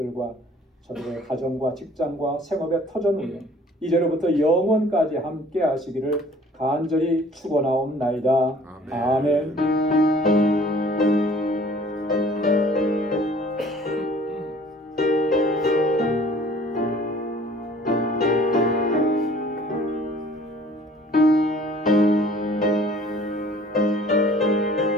저들의 가정과 직장과 생업의 터전 위에 이제로부터 영원까지 함께 하시기를 간절히 축원하옵나이다. 아멘.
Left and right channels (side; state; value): both; normal; correlation 0.52